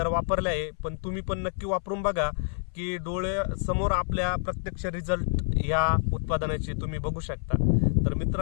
वापरले आहे, पण तुम्ही पण नक्की वापरून बघा की डोळे समोर आपल्या प्रत्यक्ष रिझल्ट या उत्पादनाचे तुम्ही बघू शकता। तर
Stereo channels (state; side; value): silent; right; 60 dB below the other